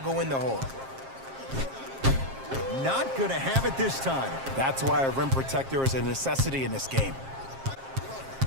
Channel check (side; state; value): left; late; 7.5 ms